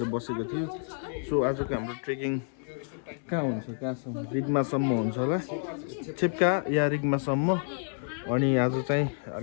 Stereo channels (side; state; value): right; silent; digital silence